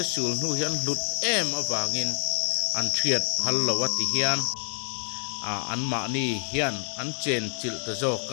sul nu hian lut em awangin an thiat phal lawati hian an ma ni hian an chen chil te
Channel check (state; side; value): silent; right; digital silence